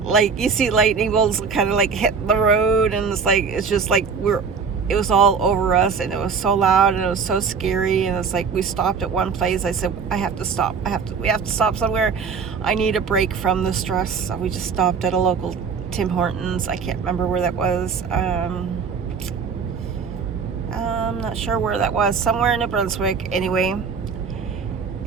you see lightning bolts kind of hit the road, and it's just it was all over us, and it was so loud, and it was so scary. And it's we stopped at one place. I said, I have to stop. We have to stop somewhere. I need a break from the stress. So we just stopped at a local Tim Hortons. I can't remember where that was. I'm not sure where that was. Somewhere in New Brunswick, anyway.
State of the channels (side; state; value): left; quieter; 5.7 dB